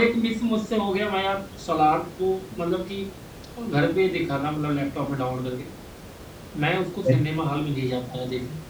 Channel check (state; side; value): identical; both; correlation 1.00